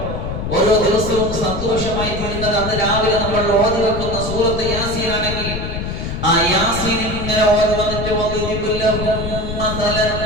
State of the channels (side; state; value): left; noise; rumble, 5 dB below the sound